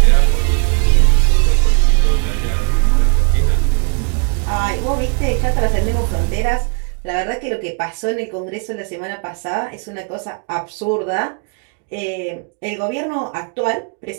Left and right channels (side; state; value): left; quieter; 38.4 dB